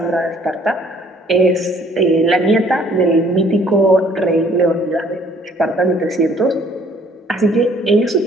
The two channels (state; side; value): normal; both; correlation 0.59